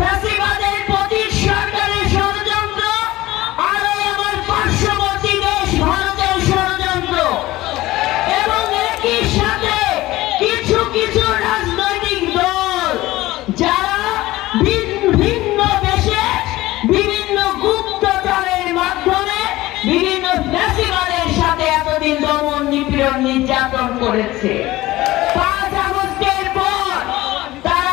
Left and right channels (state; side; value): quieter; right; 17.6 dB